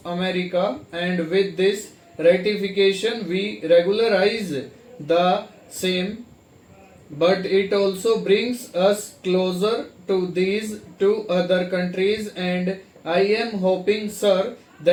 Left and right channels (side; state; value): both; identical; correlation 1.00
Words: America, and with this ratification we regularize the same, but it also brings us closer to these 2 other countries, and I am hoping, sir,